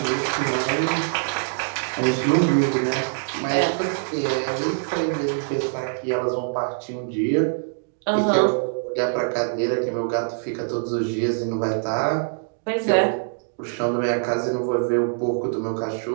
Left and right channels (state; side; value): silent; left; digital silence